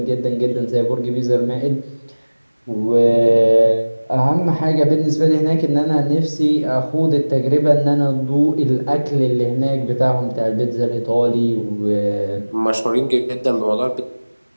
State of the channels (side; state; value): both; inverted; correlation -1.00